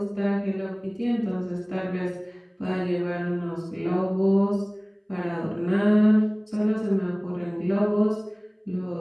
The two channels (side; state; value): both; identical; correlation 1.00